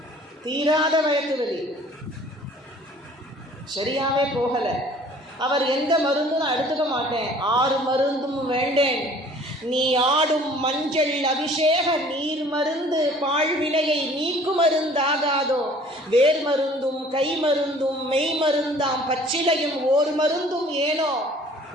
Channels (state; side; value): normal; both; correlation 0.52